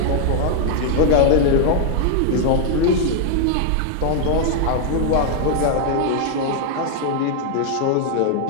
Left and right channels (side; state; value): both; different; correlation 0.00